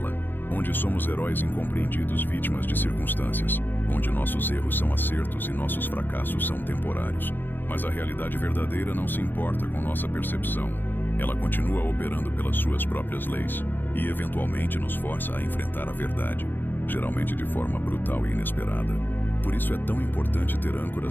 onde somos heróis incompreendidos, vítimas de circunstâncias, onde nossos erros são acertos e nossos fracassos são temporários. Mas a realidade verdadeira não se importa com nossa percepção. Ela continua operando pelas suas próprias leis e eventualmente nos força a enfrentar a verdade, geralmente de forma brutal e inesperada. Por isso é tão importante ter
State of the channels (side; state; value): right; late; 0.093 ms